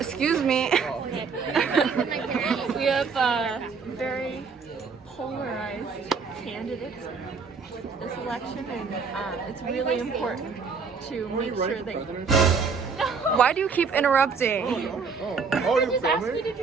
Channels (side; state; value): left; quieter; 5.3 dB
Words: me. we have very polarized candidates this election, and it's really important to make sure that... No! Why do you keep interrupting? Oh, She just asked me to